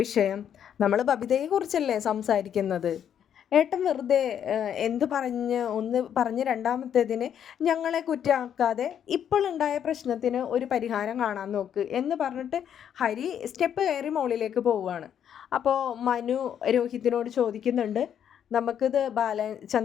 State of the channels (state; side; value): quieter; right; 9.1 dB